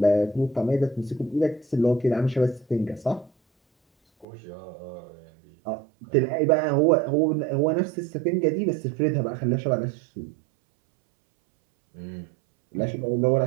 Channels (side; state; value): left; drops out; at 4.2 s